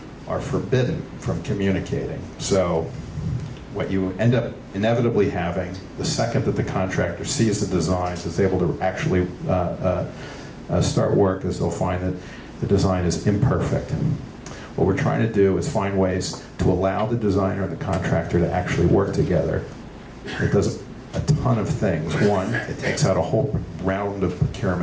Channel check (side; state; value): both; identical; correlation 1.00